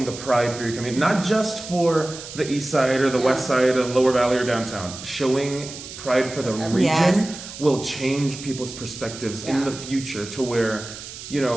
the pride for your community, not just for the east side or the west side or the lower valley or downtown, showing pride for the region Yes. will change people's perspectives in the future to where, you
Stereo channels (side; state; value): right; noise; hiss, 12 dB below the sound